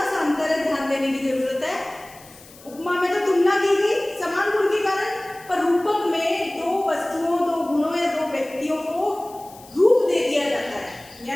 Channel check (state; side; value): noise; left; hiss, 22 dB below the sound